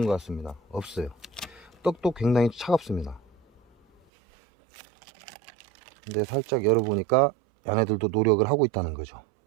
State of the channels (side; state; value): left; drops out; at 4.0 s